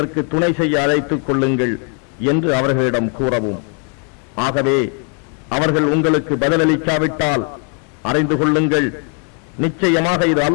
துணை செய்ய அழைத்துக் கொள்ளுங்கள் என்று அவர்களிடம் கூறவும். ஆகவே அவர்கள் உங்களுக்கு பதிலளிக்காவிட்டால் அறிந்து கொள்ளுங்கள், நிச்சயமாக இது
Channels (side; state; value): right; quieter; 39.2 dB